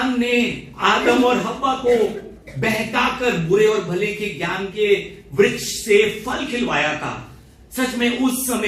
ने आदम और हव्वा को बहकाकर बुरे और भले के ज्ञान के वृक्ष से फल खिलवाया था, सच में उस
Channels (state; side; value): identical; both; correlation 1.00